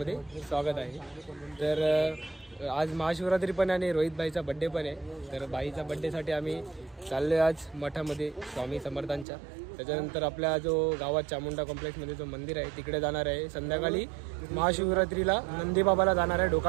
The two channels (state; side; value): drops out; left; at 9.2 s